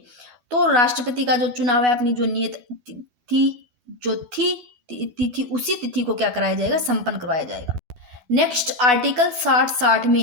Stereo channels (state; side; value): late; left; 12 ms